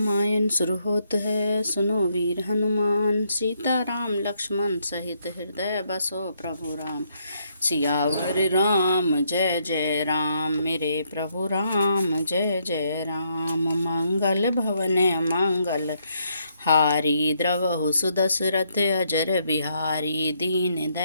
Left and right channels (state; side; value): inverted; both; correlation -0.74